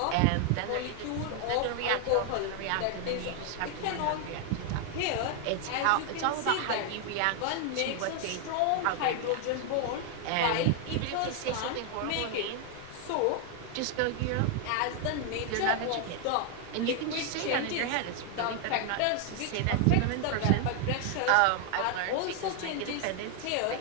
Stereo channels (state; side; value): different; both; correlation 0.00